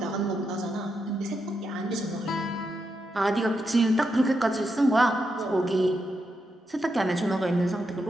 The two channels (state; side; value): normal; both; correlation 0.84